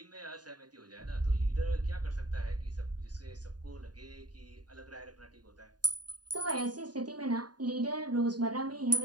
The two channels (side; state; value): left; late; 0.69 ms